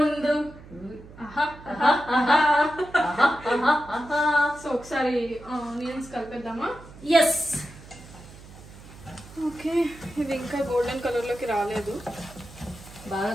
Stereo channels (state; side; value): noise; right; hum, 19 dB below the sound